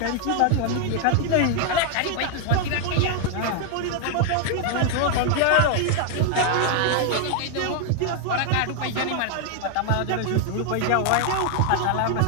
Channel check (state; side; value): different; both; correlation 0.00